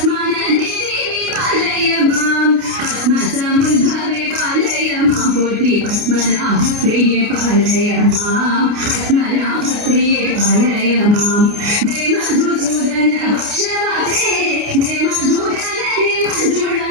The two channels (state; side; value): late; left; 28 ms